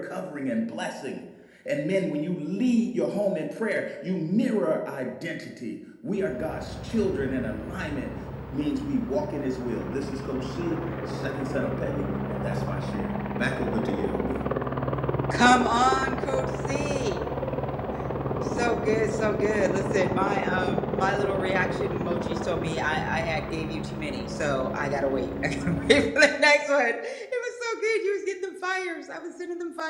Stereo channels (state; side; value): identical; both; correlation 1.00